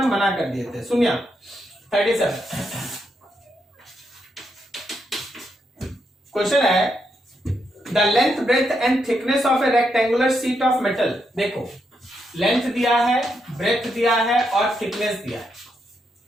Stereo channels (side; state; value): both; normal; correlation 0.81